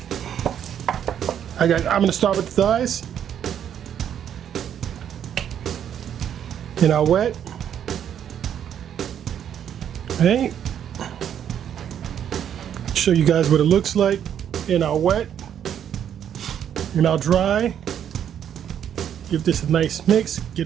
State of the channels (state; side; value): quieter; left; 9.3 dB